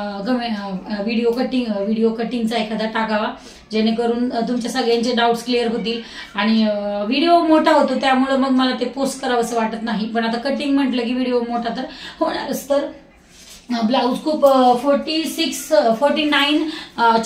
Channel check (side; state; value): both; identical; correlation 1.00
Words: व्हिडिओ कटिंगचा एखादा टाकावा, जेणेकरून तुमच्या सगळ्यांचे डाऊट्स क्लिअर होतील। आणि व्हिडिओ मोठा होतो त्यामुळे मग मला ते पोस्ट करावंसं वाटत नाही, पण आता कटिंग म्हटलं की व्हिडिओ मोठा तर होणारच। तर ब्लाऊज खूप 49